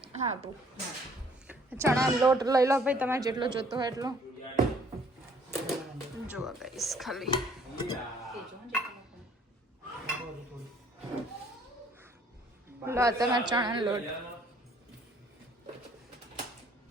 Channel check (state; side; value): normal; both; correlation 0.60